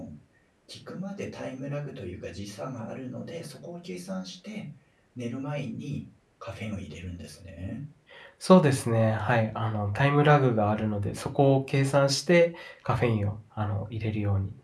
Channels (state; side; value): identical; both; correlation 1.00